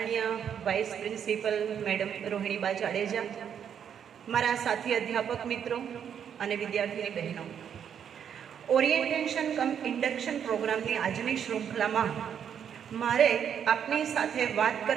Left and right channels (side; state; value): left; quieter; 8.4 dB